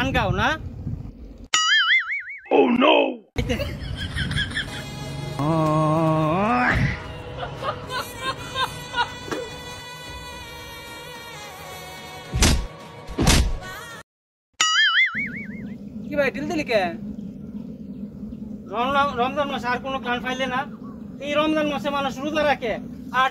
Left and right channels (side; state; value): both; identical; correlation 1.00